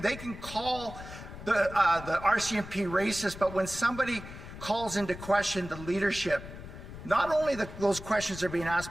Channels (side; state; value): left; noise; rumble, 13 dB below the sound